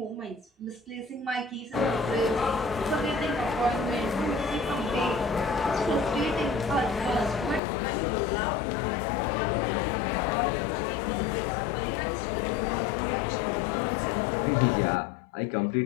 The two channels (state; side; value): drops out; right; at 7.6 s